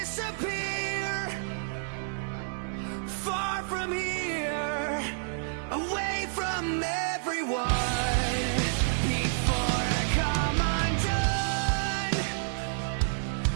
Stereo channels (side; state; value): left; silent; digital silence